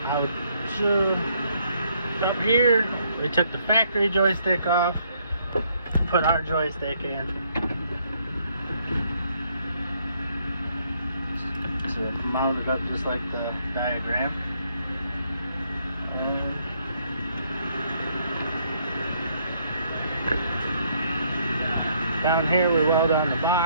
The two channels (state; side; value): inverted; both; correlation -0.70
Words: Out up here, we took the factory joystick off, put our joystick in. So it's mounted up just like the diagram. Down here we weld on the